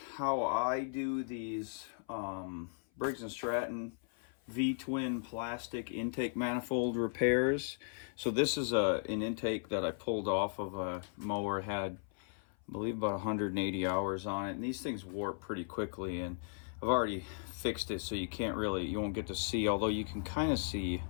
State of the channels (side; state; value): right; silent; 53 dB below the other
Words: how I do these Briggs Stratton V-twin plastic intake manifold repairs. So this is an intake that I pulled off of a mower. It had, I believe, about 180 hours on it, and these things warp pretty quickly, and I've already fixed it so you won't get to see, although you can kind of see